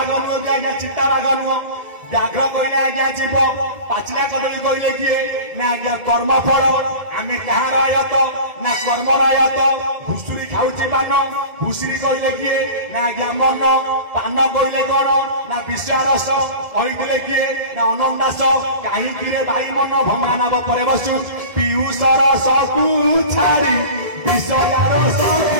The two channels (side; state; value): left; late; 1.7 ms